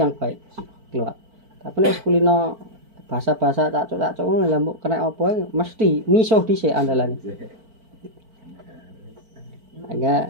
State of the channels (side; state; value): left; late; 4.5 ms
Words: baik keluar. Tapi nek kulino bahasa-bahasa cacuk-cacuk ngono lha mbok kena apa mesti misuh dhisik andalane.